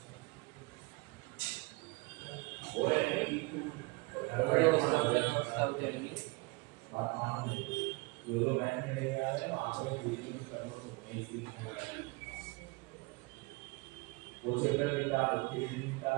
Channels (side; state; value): left; quieter; 25.8 dB